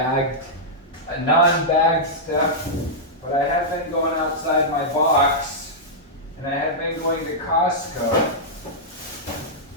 non-bagged stuff, but I have been going outside my box, and I have been going to Costco.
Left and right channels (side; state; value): both; normal; correlation -0.09